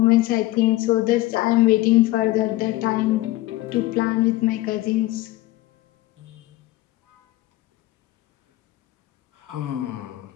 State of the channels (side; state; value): right; quieter; 17.6 dB